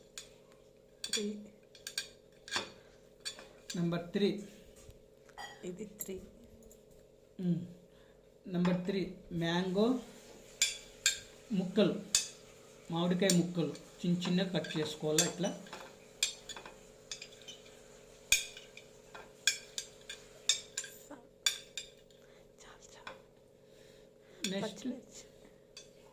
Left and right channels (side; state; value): both; identical; correlation 1.00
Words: నెంబర్ 3, ఇది 3, నెంబర్ 3 మ్యాంగో ముక్కలు, మామిడికాయ ముక్కలు చిన్న చిన్నగా కట్ చేసుకోవాలి ఇట్లా. నెక్స్ట్